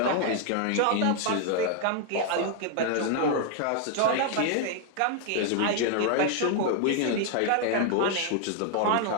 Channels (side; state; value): both; different; correlation 0.00